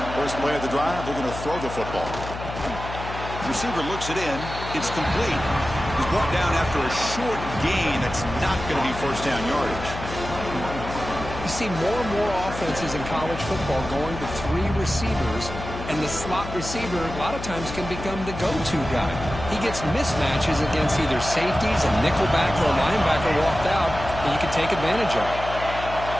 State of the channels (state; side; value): noise; left; hum, 9 dB below the sound